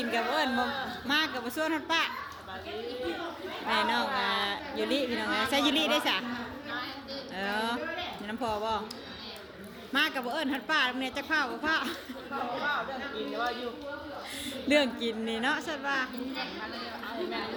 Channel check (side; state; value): both; identical; correlation 1.00